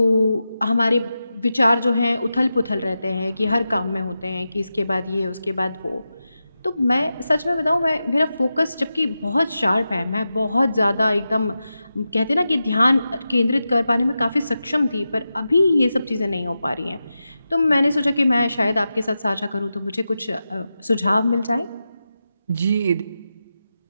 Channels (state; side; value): inverted; both; correlation -0.91